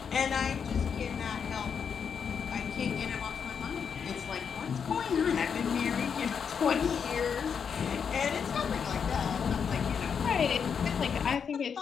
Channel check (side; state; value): right; quieter; 6.8 dB